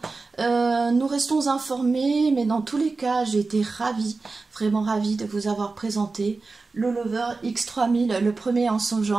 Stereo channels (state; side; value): quieter; left; 3.9 dB